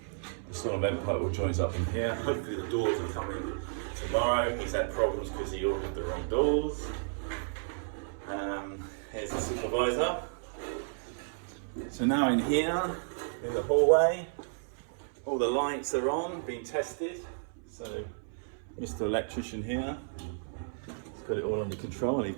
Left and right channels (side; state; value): left; silent; 56 dB below the other